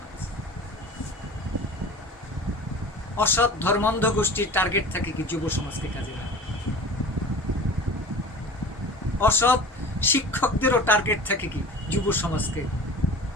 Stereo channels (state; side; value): normal; both; correlation 0.38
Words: অসৎ ধর্মান্ধ গোষ্ঠীর টার্গেট থাকে কি? যুব সমাজকে কাজে লাগা। অসৎ শিক্ষকদেরও টার্গেট থাকে কি? যুব সমাজকে